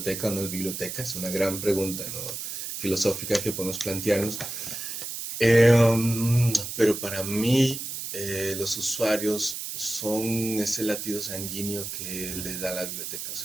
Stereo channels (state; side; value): noise; right; hiss, 6 dB below the sound